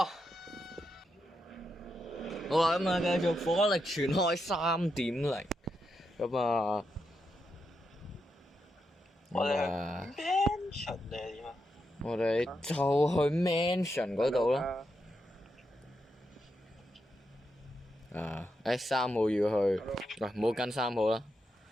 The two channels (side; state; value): both; normal; correlation 0.84